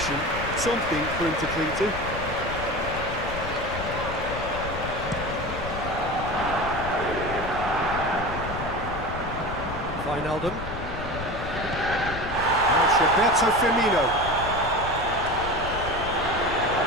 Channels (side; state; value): left; noise; rumble, 9 dB below the sound